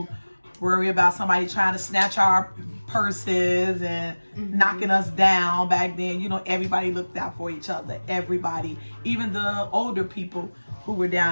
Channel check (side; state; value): both; inverted; correlation -1.00